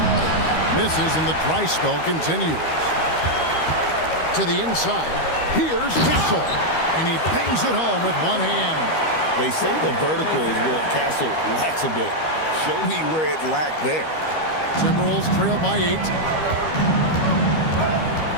Misses and the dry spell continues. To the inside. Here's Castle. And he bangs it home with one hand. They say the vertical is where Castle lacks a bit. Show me where it lacked there. Timberwolves trail by 8.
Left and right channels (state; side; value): late; right; 13 ms